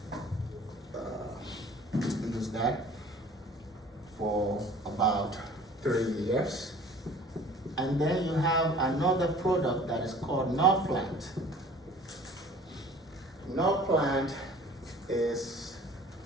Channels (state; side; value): normal; both; correlation 0.48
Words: use that for about 3 years. And then you have another product that is called Norplant. Norplant is,